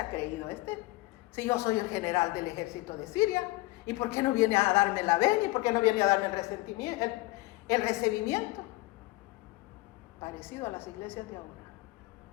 creído este? Si yo soy el general del ejército de Siria, ¿y por qué no viene a darme la venia? ¿Y por qué no viene a darme el recibimiento? Parecido a las iglesias de ahora,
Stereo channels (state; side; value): quieter; right; 20.9 dB